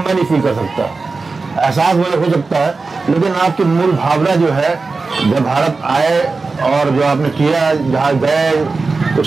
नहीं फील कर सकता। एहसास मुझे हो सकता है, लेकिन आपकी मूल भावना जो है जब भारत आए और जो आपने किया, जहाँ गए,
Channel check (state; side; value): quieter; left; 4.0 dB